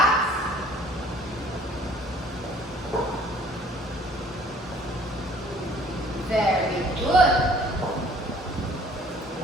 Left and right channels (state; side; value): normal; both; correlation 0.55